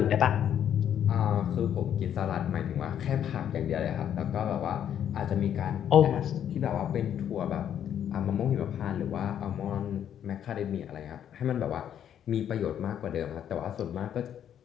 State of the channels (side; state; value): right; quieter; 9.7 dB